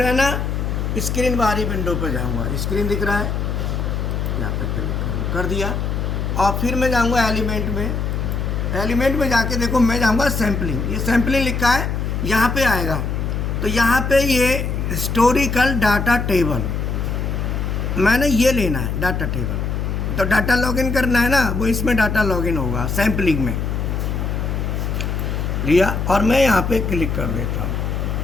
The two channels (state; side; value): noise; left; hum, 1 dB below the sound